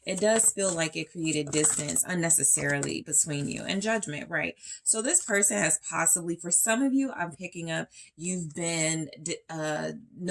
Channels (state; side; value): identical; both; correlation 1.00